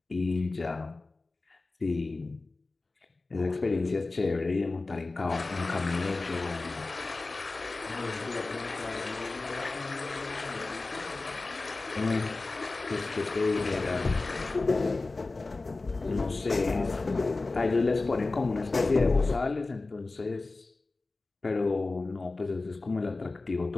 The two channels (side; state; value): right; quieter; 3.4 dB